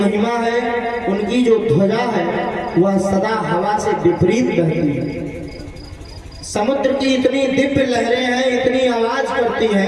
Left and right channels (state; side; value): identical; both; correlation 1.00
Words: है, उनकी जो ध्वजा है वह सदा हवा से विपरीत बहती है। समुद्र की इतनी दिव्य लहरें हैं, इतनी आवाज करती